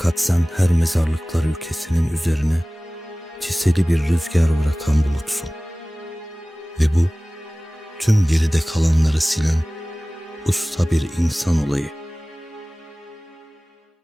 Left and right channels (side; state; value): both; normal; correlation 0.98